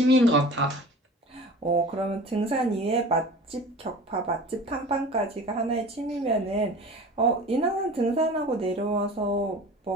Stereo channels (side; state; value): both; normal; correlation 0.39